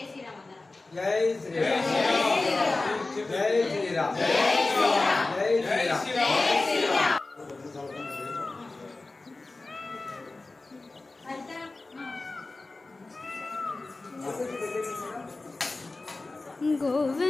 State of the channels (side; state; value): right; quieter; 3.3 dB